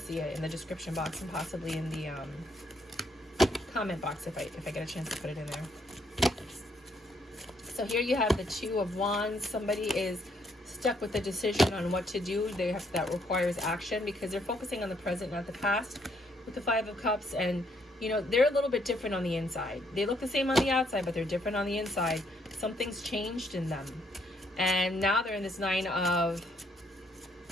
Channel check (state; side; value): normal; both; correlation 0.71